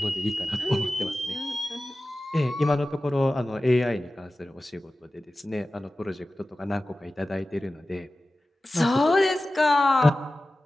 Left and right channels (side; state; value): both; normal; correlation 0.95